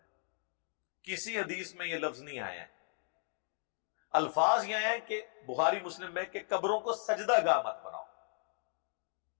کسی حدیث میں یہ لفظ نہیں آیا ہے۔ الفاظ یہ ہیں کہ بخاری مسلم میں کہ قبروں کو سجدہ گاہ مت بناؤ۔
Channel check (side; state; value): right; silent; 54 dB below the other